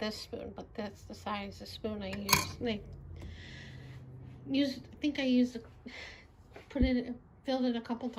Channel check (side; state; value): both; identical; correlation 1.00